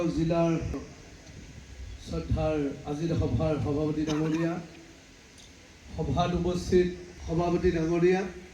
জিলাৰ শ্ৰদ্ধাৰ আজিৰ সভাৰ সভাপতি ডাঙৰীয়া, সভাত উপস্থিত সভাপতি ডাঙৰীয়া,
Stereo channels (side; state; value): both; identical; correlation 1.00